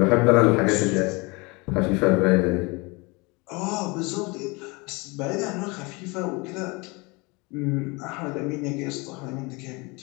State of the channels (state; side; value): quieter; right; 26.9 dB